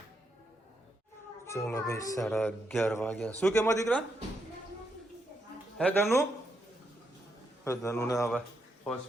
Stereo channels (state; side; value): normal; both; correlation 0.80